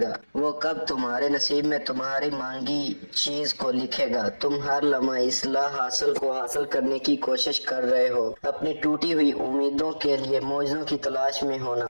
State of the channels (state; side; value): inverted; both; correlation -1.00